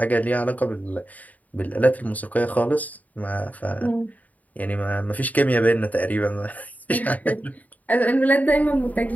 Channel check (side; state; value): right; late; 0.075 ms